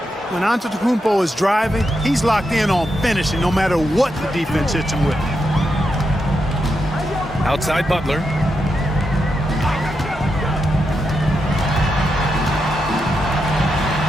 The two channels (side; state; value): both; normal; correlation 0.85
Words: When Antetokounmpo is driving, he's locked in on finishing no matter what the defense hits him with. Outside Butler.